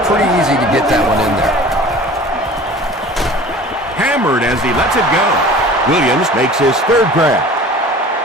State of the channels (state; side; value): normal; both; correlation 0.42